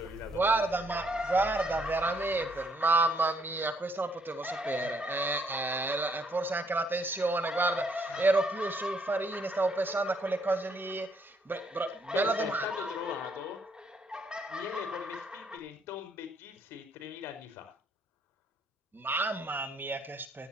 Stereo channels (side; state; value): both; normal; correlation 0.69